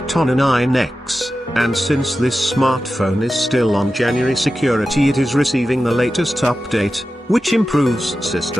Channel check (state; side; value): normal; both; correlation 0.93